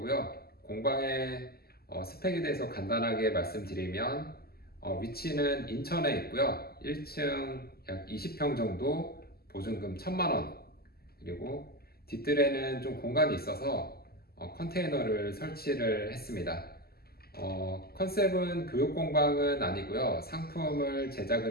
공방의 스펙에 대해서 간단하게 말씀드리면 위치는 인천에 있고요. 1층 약 20평 정도, 보증금 1,000만 원, 그리고 뒷뜰에는 좀 공간이 있어서 컨테이너를 설치를 했습니다. 컨셉은 교육공방은 아니고요. 상품을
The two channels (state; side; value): late; right; 0.45 ms